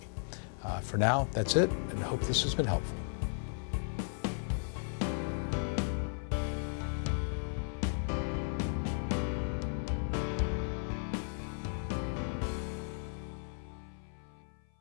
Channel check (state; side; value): silent; right; 54 dB below the other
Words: For now, that's it, and I hope this has been helpful.